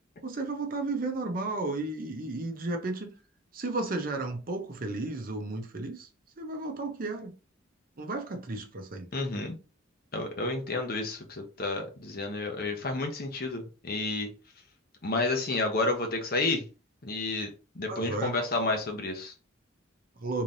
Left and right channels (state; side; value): normal; both; correlation 0.17